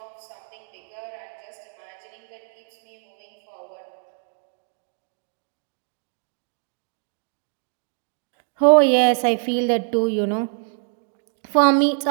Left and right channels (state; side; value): silent; left; digital silence